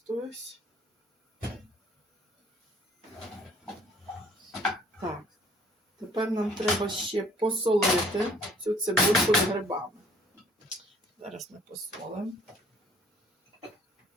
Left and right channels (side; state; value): both; normal; correlation 0.57